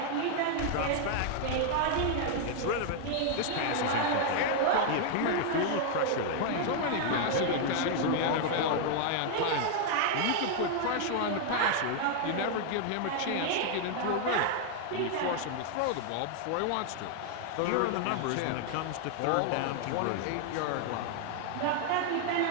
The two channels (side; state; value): both; different; correlation 0.00